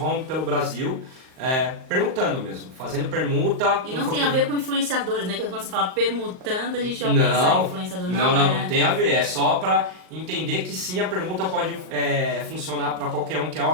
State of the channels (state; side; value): late; left; 38 ms